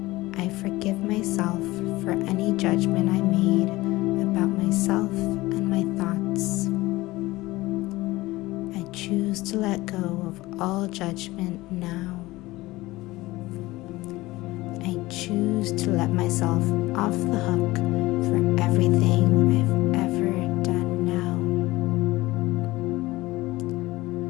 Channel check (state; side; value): quieter; right; 19.3 dB